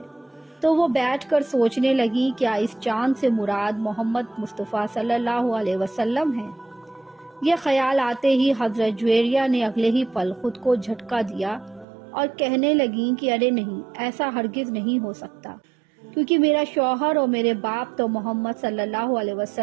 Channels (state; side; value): drops out; left; at 11.9 s